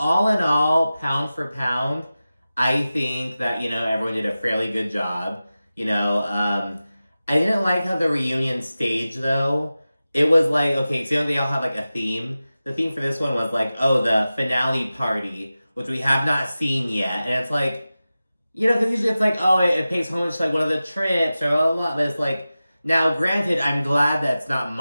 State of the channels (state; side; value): inverted; both; correlation -0.95